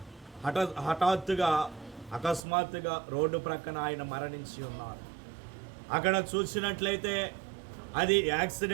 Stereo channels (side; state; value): left; drops out; at 2.5 s